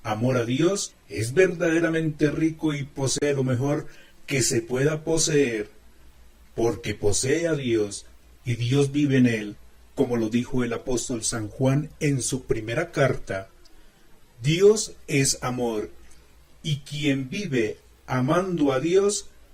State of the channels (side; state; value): both; identical; correlation 1.00